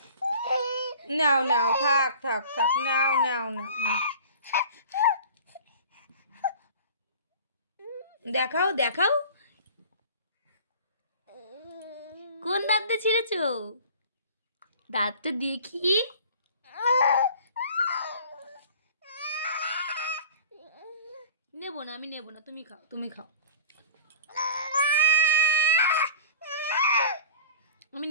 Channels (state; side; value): inverted; both; correlation -0.42